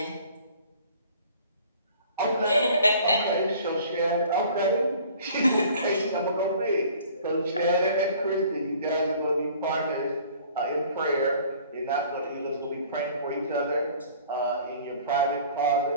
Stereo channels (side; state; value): both; inverted; correlation -0.51